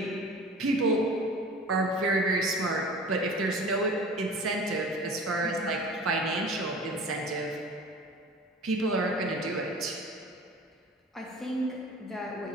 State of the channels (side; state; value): both; normal; correlation 0.40